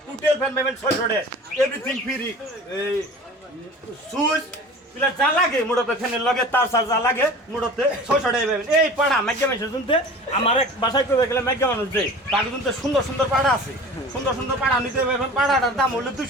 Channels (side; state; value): both; normal; correlation 0.39